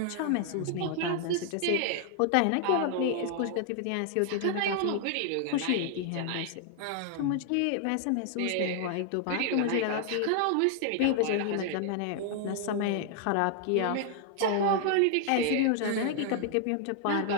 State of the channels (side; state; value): both; different; correlation 0.00